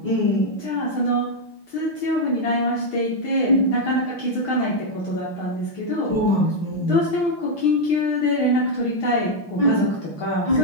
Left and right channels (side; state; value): right; late; 5.7 ms